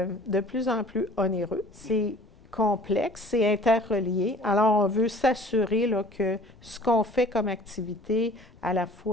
de plus en plus onéreux. C'est complexe, c'est interrelié. Alors, on veut s'assurer là, que ce qu'on fait comme activité, à la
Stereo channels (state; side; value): normal; both; correlation 0.49